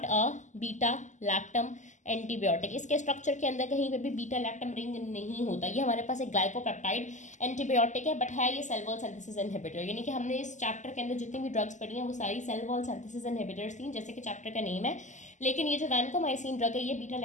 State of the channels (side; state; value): right; late; 0.35 ms